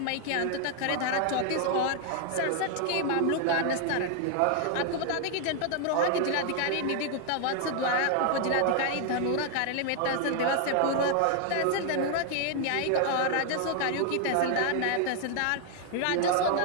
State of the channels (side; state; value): both; different; correlation 0.00